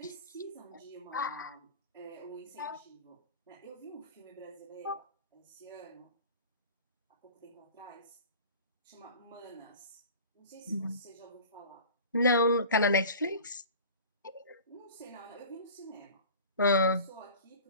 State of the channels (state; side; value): inverted; both; correlation -0.40